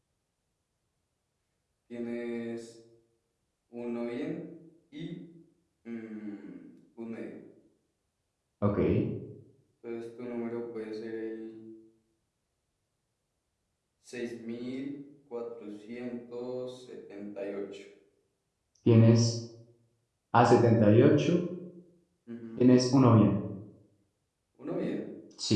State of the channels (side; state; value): both; identical; correlation 1.00